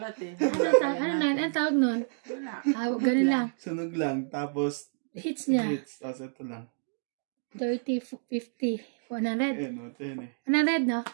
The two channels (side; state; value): left; silent; digital silence